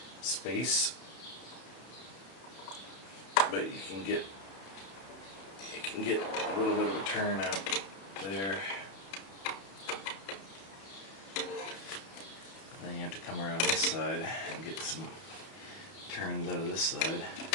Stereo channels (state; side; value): late; right; 31 ms